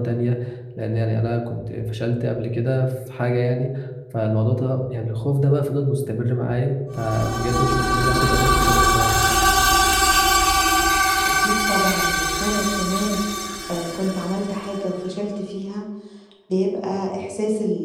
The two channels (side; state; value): both; identical; correlation 1.00